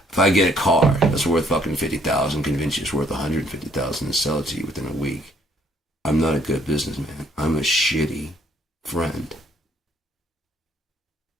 If I get a car that's worth fucking $50,000, convince you it's worth $150,000 and sell it to you within a week, I'm not a good businessman. I'm a shitty friend.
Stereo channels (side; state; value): both; normal; correlation 0.65